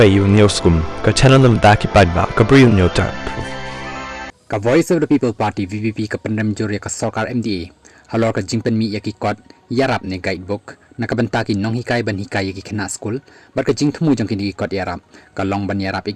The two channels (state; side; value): identical; both; correlation 1.00